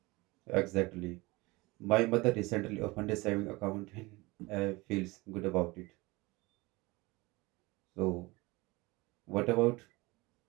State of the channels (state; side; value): quieter; left; 22.8 dB